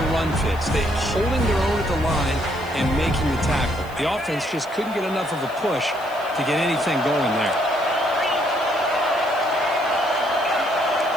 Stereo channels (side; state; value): left; noise; hiss, 23 dB below the sound